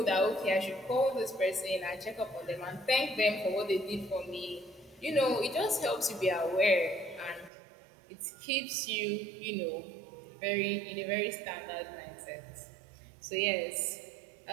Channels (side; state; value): left; drops out; at 7.5 s